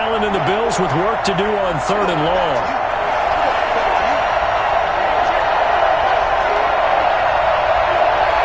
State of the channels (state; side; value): identical; both; correlation 1.00